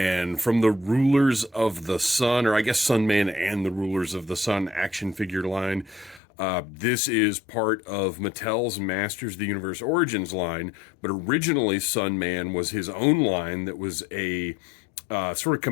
from the Rulers of the Sun, or I guess Sunman and the Rulers of the Sun action figure line. This is part of Mattel's Masters of the Universe Origins line, but originally Sunman was his own line that was a sort of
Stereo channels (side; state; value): right; drops out; at 6.2 s